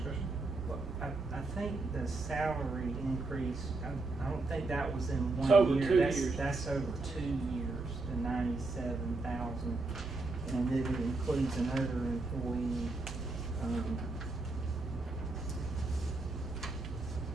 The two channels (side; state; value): left; quieter; 3.4 dB